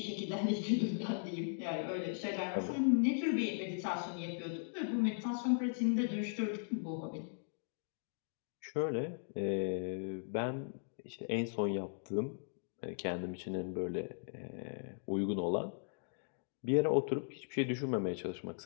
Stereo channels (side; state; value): right; silent; digital silence